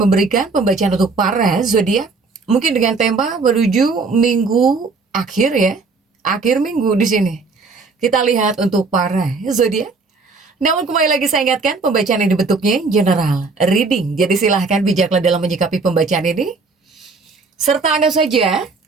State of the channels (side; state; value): left; quieter; 4.1 dB